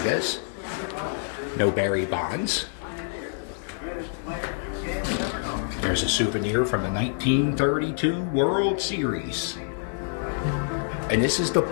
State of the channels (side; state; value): right; silent; 61 dB below the other